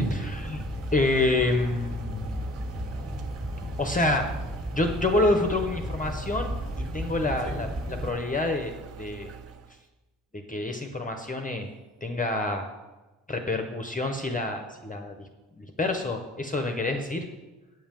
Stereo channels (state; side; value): normal; both; correlation 0.50